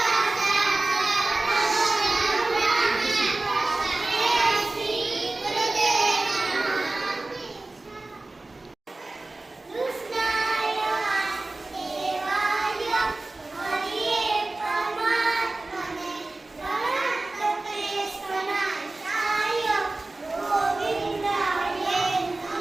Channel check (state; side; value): quieter; left; 3.1 dB